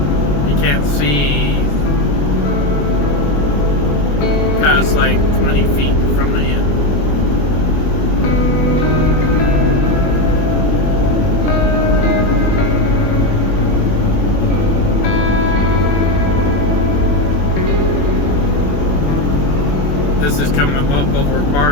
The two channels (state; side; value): late; right; 21 ms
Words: You can't see past like 20 feet from the end. This is coming up over